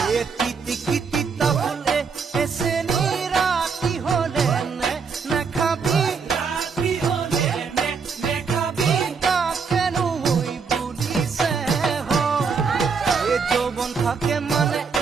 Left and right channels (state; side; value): quieter; left; 5.5 dB